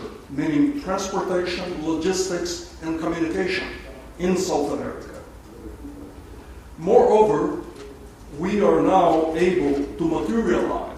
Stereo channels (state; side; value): identical; both; correlation 1.00